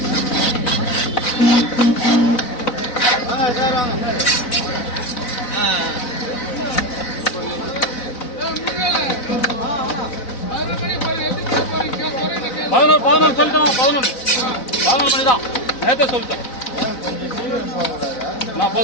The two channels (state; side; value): late; right; 4.0 ms